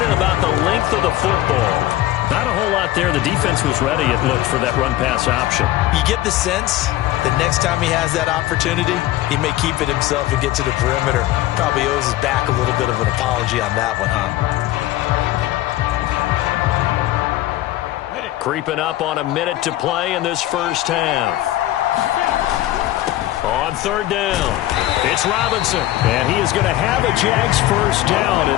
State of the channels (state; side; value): quieter; right; 15.4 dB